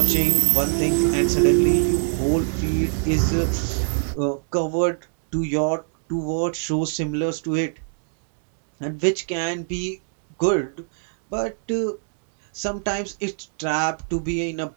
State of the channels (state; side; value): silent; left; digital silence